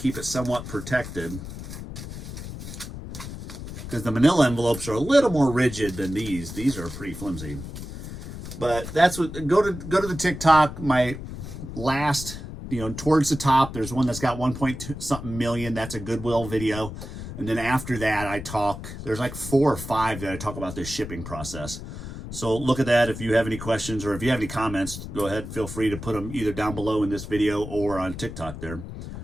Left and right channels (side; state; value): left; noise; rumble, 10 dB below the sound